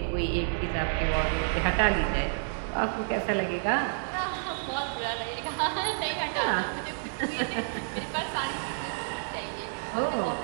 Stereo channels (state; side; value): silent; left; digital silence